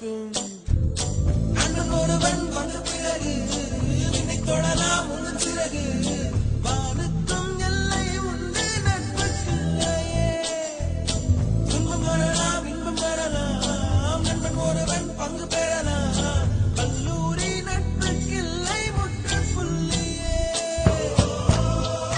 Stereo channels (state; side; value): identical; both; correlation 1.00